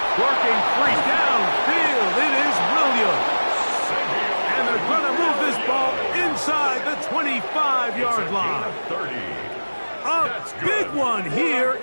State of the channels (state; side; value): inverted; both; correlation -1.00